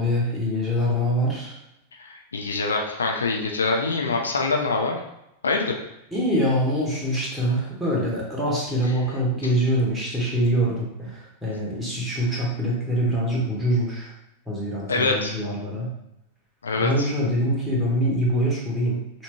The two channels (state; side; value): normal; both; correlation 0.02